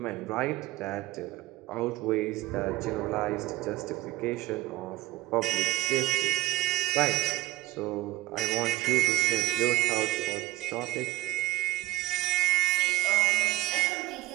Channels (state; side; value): quieter; left; 17.8 dB